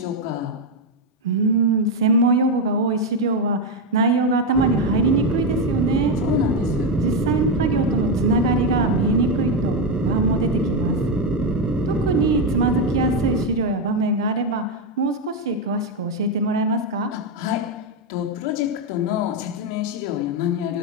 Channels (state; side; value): normal; both; correlation 0.06